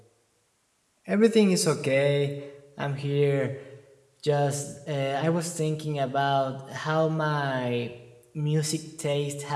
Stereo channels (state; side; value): identical; both; correlation 1.00